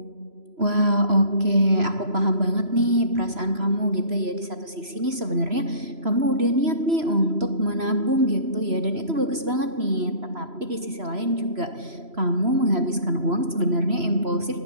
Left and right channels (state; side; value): late; left; 3.0 ms